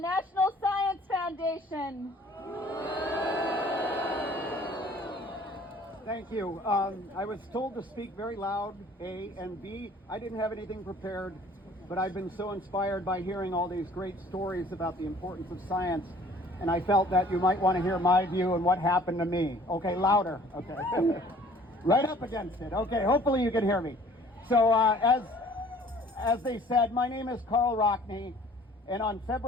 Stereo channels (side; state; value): both; normal; correlation 0.53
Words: Science Foundation. Thank you. I was told to speak very loud, A, and B, I didn't have anything prepared, but I've been so inspired by hearing all these great stories about the importance of science, and I felt that you might want to hear my view and what happened to me. Okay, louder. Okay. Right up against it. Okay, hopefully you can hear me. So as they said, my name is Karl Rockne, and on